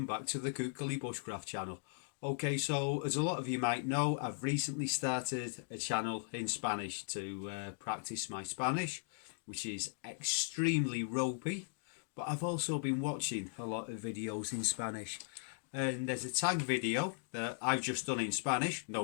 back to the Kukali Bushcraft channel. Okay, so as a lot of you might know, I've recently started a channel in Spanish to practice my Spanish, which is extremely ropey, but I've also been watching a lot of videos in Spanish. And there's a tag video that I've just done in Spanish.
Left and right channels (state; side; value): silent; right; digital silence